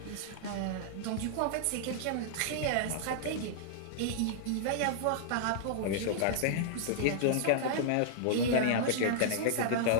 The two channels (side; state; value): both; different; correlation -0.01